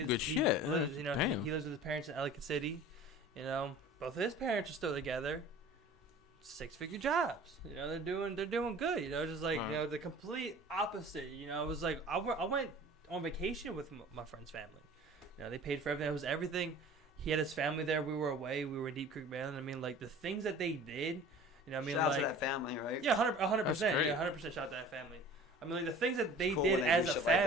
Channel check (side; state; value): both; normal; correlation 0.44